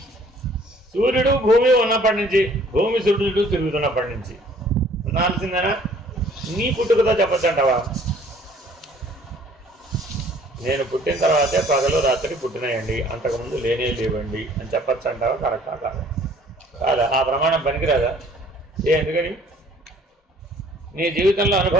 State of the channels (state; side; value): normal; both; correlation 0.56